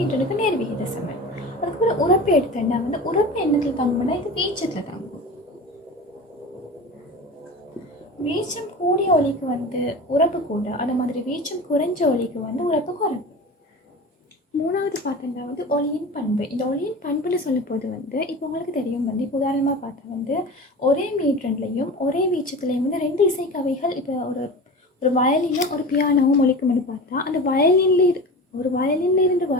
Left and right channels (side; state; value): both; normal; correlation 0.32